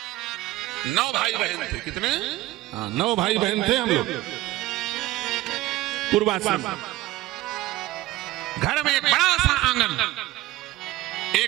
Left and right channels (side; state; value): left; quieter; 17.0 dB